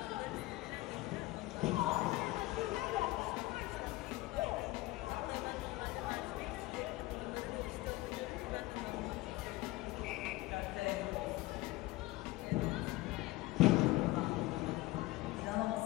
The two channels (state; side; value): quieter; right; 19.2 dB